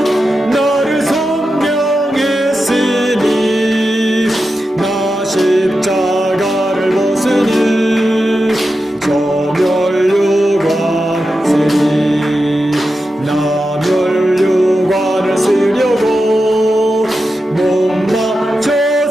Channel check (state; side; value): normal; both; correlation 0.90